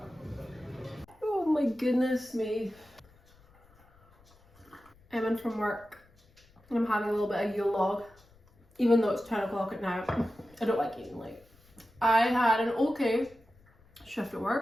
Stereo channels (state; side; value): noise; left; rumble, 29 dB below the sound